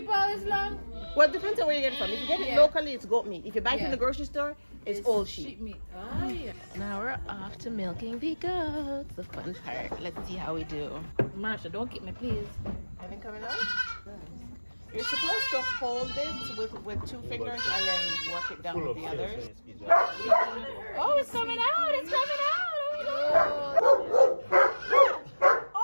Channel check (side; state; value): both; inverted; correlation -1.00